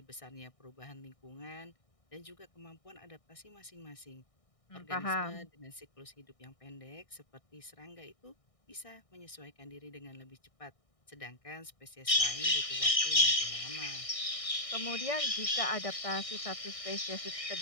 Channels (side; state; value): right; late; 1.6 ms